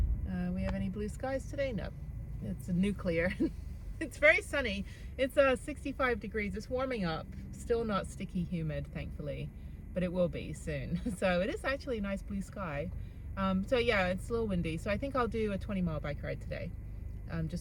We have any blue skies today? No. It's nuclear. It's very sunny. It's 65 degrees. It's warming up. Still not sticky humid, thankfully, but it will be soon. So it is actually a nice blue sky. So yeah, it's a little windy. So I think I'll do a 20-mile bike ride today.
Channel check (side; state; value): both; identical; correlation 1.00